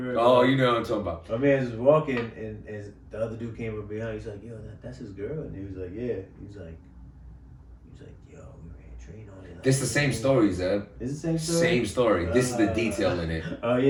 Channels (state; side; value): identical; both; correlation 1.00